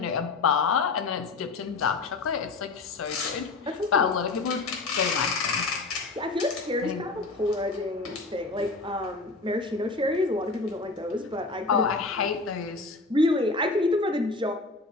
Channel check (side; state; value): right; quieter; 3.7 dB